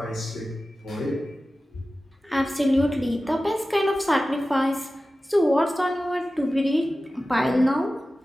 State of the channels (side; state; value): both; normal; correlation 0.95